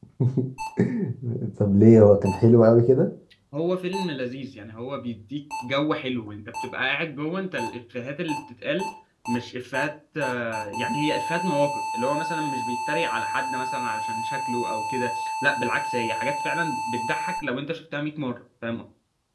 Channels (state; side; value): identical; both; correlation 1.00